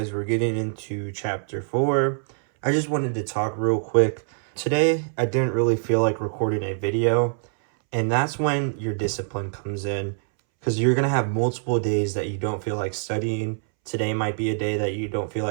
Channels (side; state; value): left; silent; 62 dB below the other